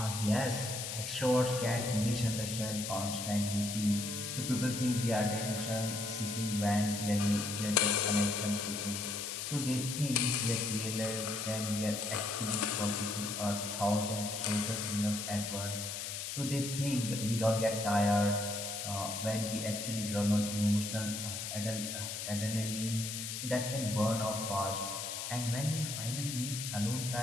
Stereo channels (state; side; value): noise; left; hiss, 5 dB below the sound